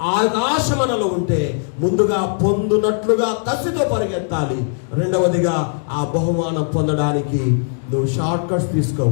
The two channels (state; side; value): silent; right; digital silence